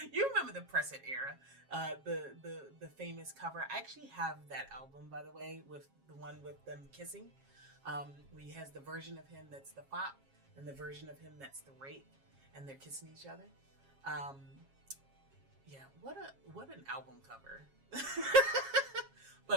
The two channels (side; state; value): left; late; 7.4 ms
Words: You remember the Press It era, the famous cover. I actually have that album, by the way, with the one with them kissing. Where he has the version of him that's the pop and the version of him that's the rape, and they're kissing each other. Yeah, what an album cover.